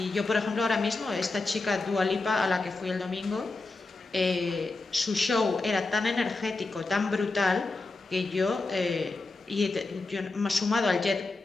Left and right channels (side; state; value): right; quieter; 3.4 dB